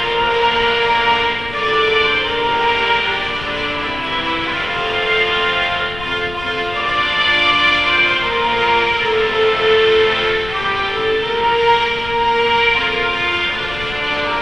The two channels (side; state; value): left; noise; rumble, 13 dB below the sound